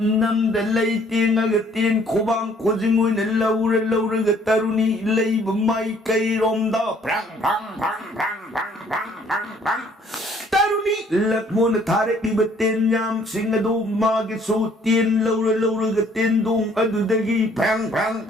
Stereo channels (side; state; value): both; normal; correlation 0.61